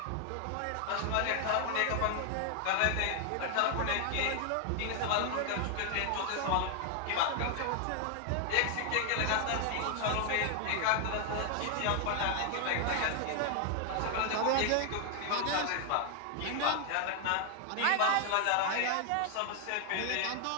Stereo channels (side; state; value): both; different; correlation 0.00